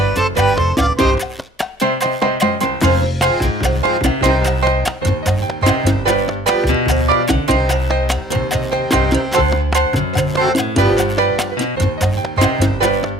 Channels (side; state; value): both; normal; correlation 0.60